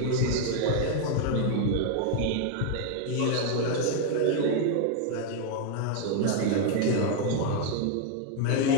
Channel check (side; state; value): both; different; correlation 0.01